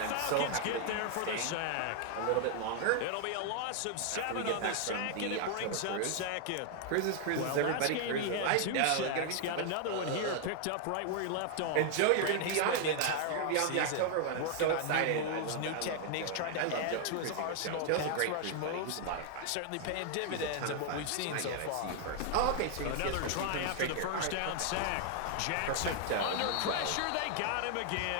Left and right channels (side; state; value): both; different; correlation 0.00